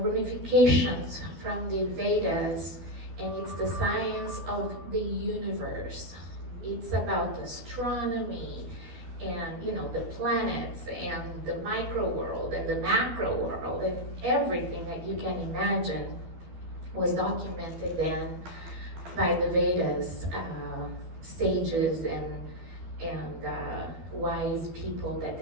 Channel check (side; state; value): left; late; 12 ms